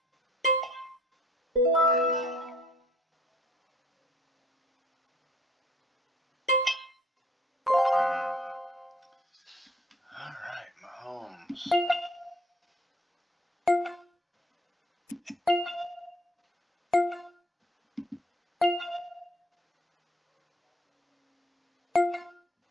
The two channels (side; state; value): both; normal; correlation 0.57